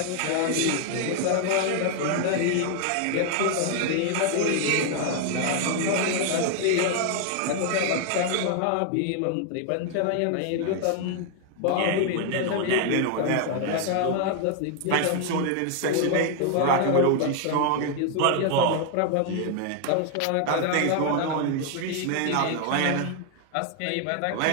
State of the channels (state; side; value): different; both; correlation 0.00